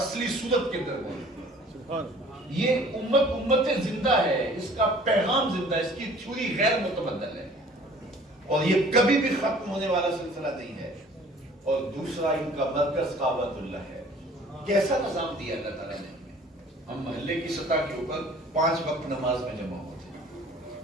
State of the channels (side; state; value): both; normal; correlation 0.51